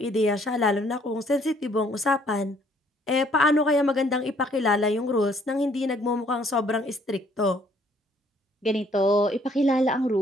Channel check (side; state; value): both; normal; correlation 0.63